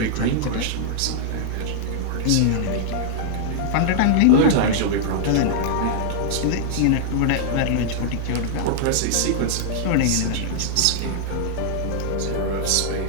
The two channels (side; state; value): both; different; correlation -0.01